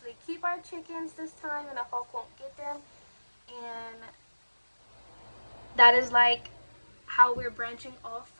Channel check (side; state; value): both; inverted; correlation -1.00